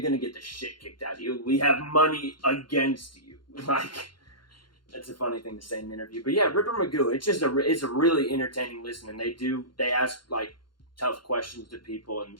gonna get the shit kicked out of you. We have money against you, like. That's a funny thing to say in an interview. But yeah, Ripper Magoo, it's a really entertaining listen. And they ask like tough questions to people.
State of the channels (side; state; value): right; late; 0.72 ms